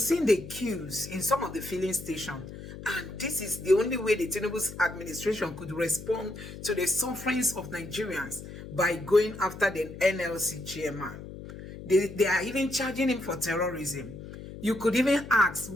seen the queues in some of the filling stations, and this is the only way the Tinubu's administration could respond to the sufferings of Nigerians by going after the NLC chairman. They are even charging him for terrorism. You could even ask,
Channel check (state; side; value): noise; left; hum, 12 dB below the sound